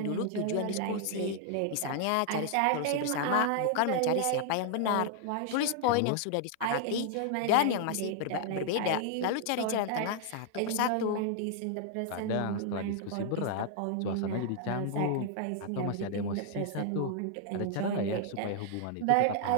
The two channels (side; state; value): both; different; correlation 0.00